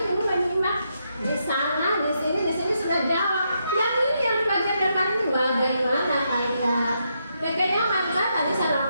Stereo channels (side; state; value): both; inverted; correlation -0.80